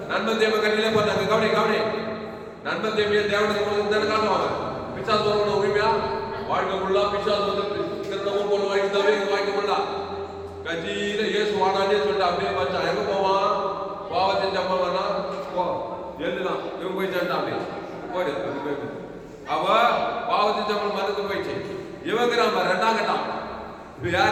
நண்பன் தேவ கண்ணிலே பண்ணாங்க. கவனி கவனி, நண்பன் தேவையை தேவனுக்கு கொடுத்து காட்டுவாங்க. பிசாசு வரணும் உரிமையா வாழ்க்கை ஃபுல்லா பிசாசு வந்து திருடவும் பொண்ணு வாங்கி தவிர வாங்கி முடியல. கட்சியில இயேசு வாடானே சொல்லிட்டு அப்படியே பச்சான். எங்க போவான்? பாவத்தின் சம்பவம்னா போ எழுதுதான் இவன் போய் சேர்ந்தான். அப்படி போயிடு. அவ பாவத்தின் சம்பளம் மறந்து போயிடுச்சு. இவங்கிறாம ரெண்டாம் கட்டம். இப்ப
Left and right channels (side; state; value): both; identical; correlation 1.00